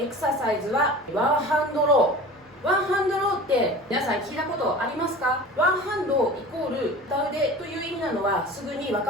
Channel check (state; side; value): normal; both; correlation 0.38